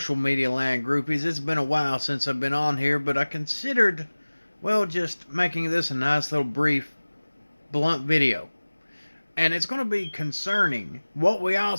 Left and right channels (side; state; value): both; inverted; correlation -1.00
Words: media land groupies? It's been a while since I've been on here, but I considered, just making this a nice little brief, blunt video. And it's going to be concerning what we all